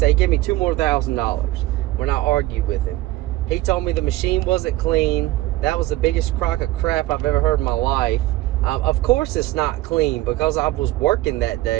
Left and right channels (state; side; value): quieter; left; 17.0 dB